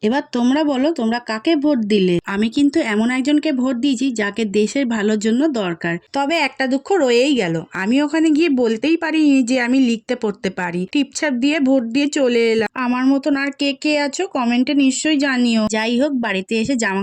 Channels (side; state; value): both; identical; correlation 1.00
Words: এবার তোমরা বলো, তোমরা কাকে ভোট দিলে? আমি কিন্তু এমন একজনকে ভোট দিয়েছি যাকে দেশের ভালোর জন্য দরকার। তবে একটা দুঃখ রয়েই গেল, আমি ওখানে গিয়ে বলতেই পারিনি যে আমি লিখতে পড়তে পারি। টিপছাপ দিয়ে ভোট দিয়ে চলে এলাম। আমার মতন আর কে কে আছো কমেন্টে নিশ্চয়ই জানিও। যাই হোক, বাড়িতে এসে জামা